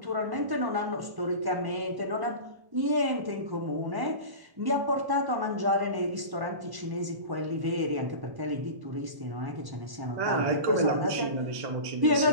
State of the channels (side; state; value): left; late; 1.1 ms